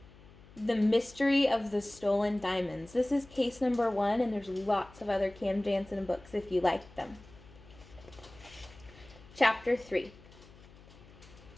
The Mystery of the Stolen Diamonds. This is case number 1, and there's lots of other Cam Jansen books if you like them. Chapter 3.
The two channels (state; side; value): noise; left; hum, 22 dB below the sound